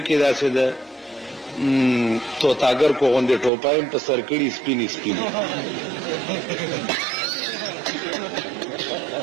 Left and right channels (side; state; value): left; drops out; at 3.5 s